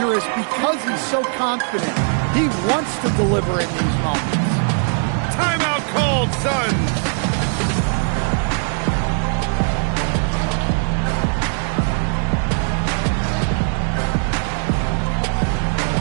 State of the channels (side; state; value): left; silent; 56 dB below the other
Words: because he's so confident. He wants to deliver in these moments. Timeout called, Suns.